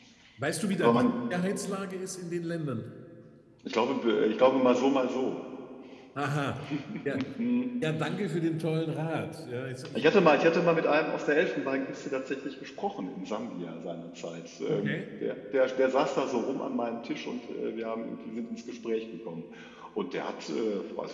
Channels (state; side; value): identical; both; correlation 1.00